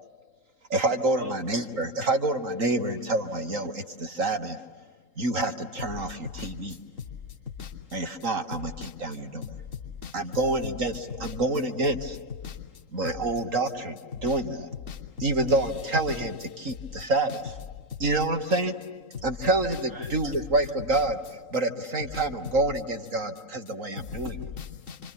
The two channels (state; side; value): late; left; 3.8 ms